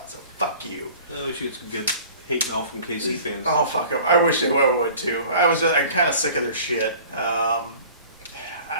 So fuck you. I wish you had some good hate mail from KC fans. Oh, fuck them. I wish they would, too. I'm kind of sick of their shit. I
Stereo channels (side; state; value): both; inverted; correlation -0.46